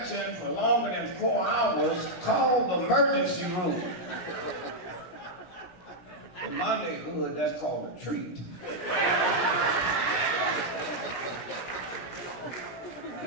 for longer than 4 hours, call the emergency room. In my neighborhood, that's called a treat.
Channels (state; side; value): late; right; 17 ms